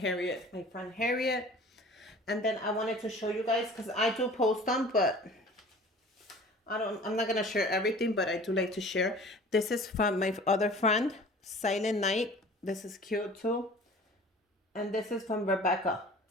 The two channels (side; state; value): both; normal; correlation 0.45